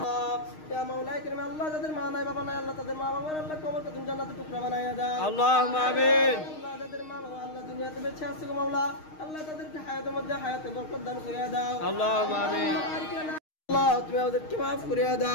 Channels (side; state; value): right; late; 6.5 ms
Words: দাও ইয়া মাওলা কারীম আল্লাহ যাদের মা নাই বাবা নাই আল্লাহ তাদের মা বাবার আল্লাহ কবরকে তুমি জান্নাতের টুকরা বানাইয়া দাও اللهم آمين আল্লাহ যাদের মা বাবা আল্লাহ দুনিয়াতে বেঁচে আছে গো মাওলা আল্লাহ তাদেরকে হায়াতের মধ্যে হায়াতে বরকত দান করিয়া দাও اللهم آمين আল্লাহ তুমি আমাদেরকে maaf করিয়া